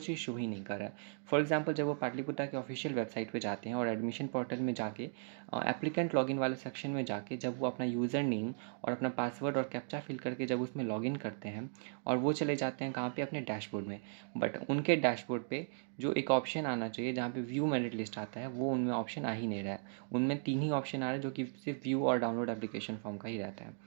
शो ही नहीं कर रहा है। फॉर एग्जाम्पल, जब वो पाटलिपुत्र के ऑफिशियल वेबसाइट पर जाते हैं और एडमिशन पोर्टल में जाके एप्लीकेंट लॉगिन वाले सेक्शन में जाके जब वो अपना यूज़र नेम और अपना पासवर्ड और कैप्चा फिल करके जब उसमें लॉगिन करते हैं, और वो चले जाते हैं कहाँ पे, अपने डैशबोर्ड में। बट उनके डैशबोर्ड पे जो एक ऑप्शन आना चाहिए जहाँ पे व्यू मेरिट लिस्ट आता है, वो उनमें ऑप्शन आ ही नहीं रहा है। उनमें 3 ही ऑप्शन आ रहे हैं, जो कि सिर्फ व्यू और डाउनलोड एप्लीकेशन फॉर्म का ही रहता है।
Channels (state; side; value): silent; left; digital silence